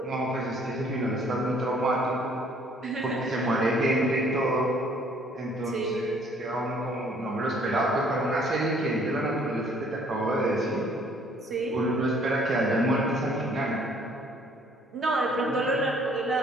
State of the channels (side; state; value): both; normal; correlation 0.60